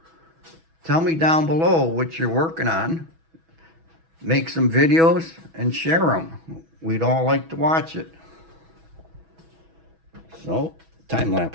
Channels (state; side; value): late; left; 6.1 ms